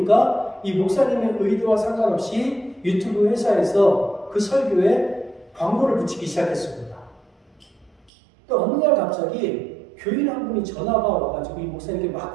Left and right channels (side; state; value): left; drops out; at 8.1 s